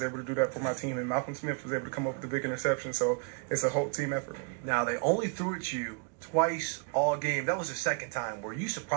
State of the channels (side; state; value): left; quieter; 37.9 dB